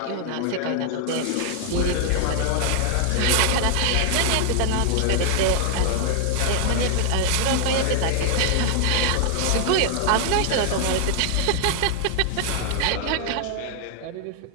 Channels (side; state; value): both; different; correlation 0.00